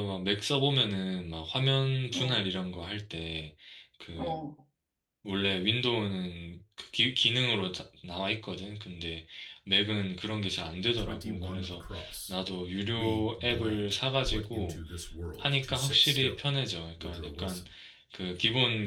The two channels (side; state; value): both; identical; correlation 1.00